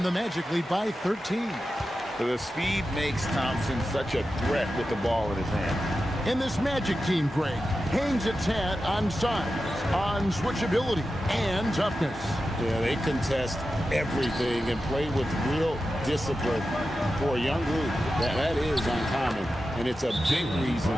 the Magic lead by 13. The speed makes Thompson such a threat with the ball in his hand. And this Magic team, Greg, hangs its hat on size, on switchability, and toughness. Yeah, they contest everything and play with real discipline. For a young group, that is uncommon. And it's a big reason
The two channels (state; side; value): normal; both; correlation 0.92